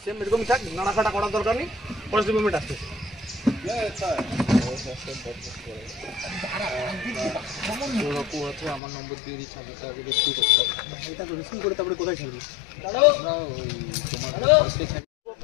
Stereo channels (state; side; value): drops out; right; at 8.8 s